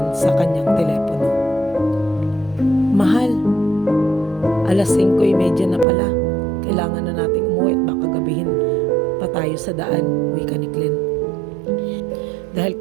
sa kanyang telepono. "Mahal, alas 5:30 na pala. Kailangan na nating umuwi at baka gabihin pa tayo sa daan," wika ni Glenn. Dahil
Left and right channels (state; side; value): drops out; left; at 5.9 s